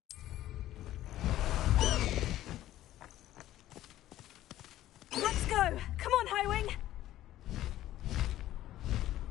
Let's go! Come on, Highwing!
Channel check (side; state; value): right; quieter; 13.9 dB